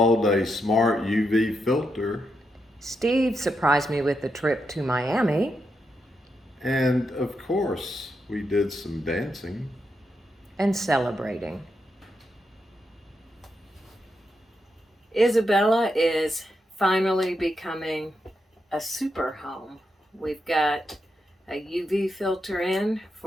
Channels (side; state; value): both; normal; correlation 0.84